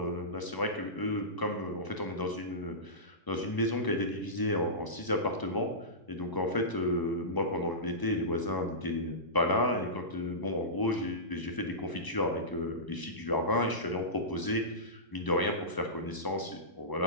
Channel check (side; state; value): right; late; 1.0 ms